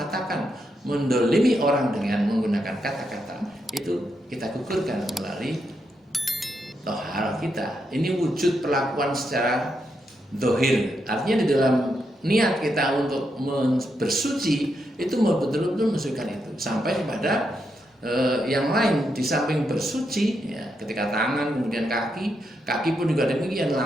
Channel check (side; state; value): both; normal; correlation 0.82